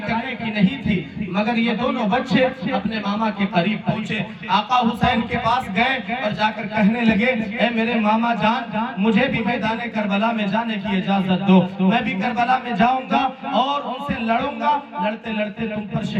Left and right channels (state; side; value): identical; both; correlation 1.00